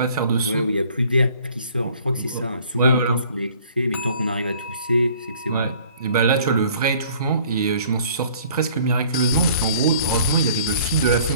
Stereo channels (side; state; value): both; inverted; correlation -0.54